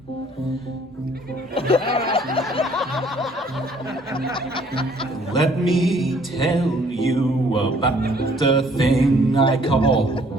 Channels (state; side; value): normal; both; correlation 0.60